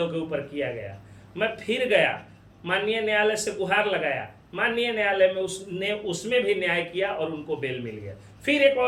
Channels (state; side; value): identical; both; correlation 1.00